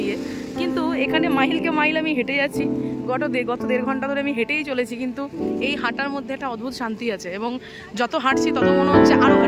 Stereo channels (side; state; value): both; identical; correlation 1.00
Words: কিন্তু এখানে মাইলকে মাইল আমি হেঁটে যাচ্ছি, গত 1.5 ঘন্টা ধরে আমি হেঁটেই চলেছি, কিন্তু এই হাঁটার মধ্যে একটা অদ্ভুত শান্তি আছে। এবং যত হাঁটছি তত মনে হচ্ছে আরও